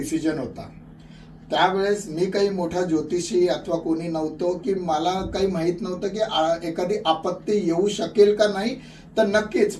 होता. त्यावेळेस मी काही मोठा ज्योतिषी अथवा कोणी नव्हतो की मला काही माहित नव्हतं की एखादी आपत्ती येऊ शकेल का नाही. तर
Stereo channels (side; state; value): both; identical; correlation 1.00